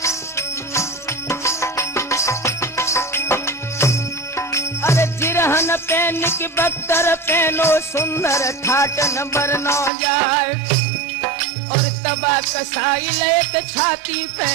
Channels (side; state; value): left; drops out; at 9.9 s